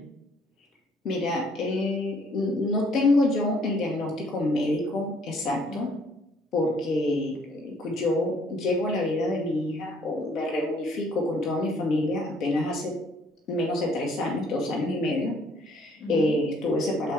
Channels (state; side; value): normal; both; correlation 0.63